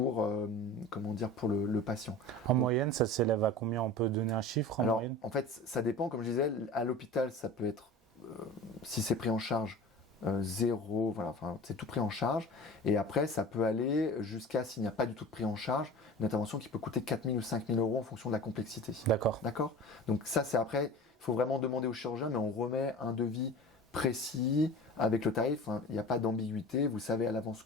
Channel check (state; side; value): normal; both; correlation 0.37